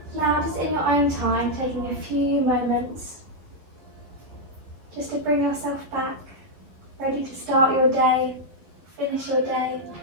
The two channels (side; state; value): left; late; 12 ms